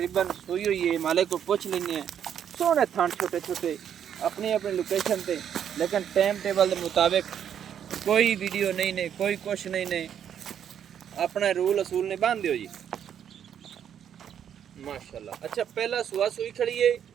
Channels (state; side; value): quieter; left; 9.0 dB